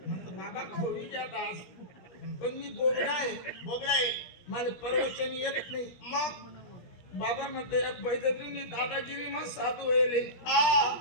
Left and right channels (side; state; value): right; late; 17 ms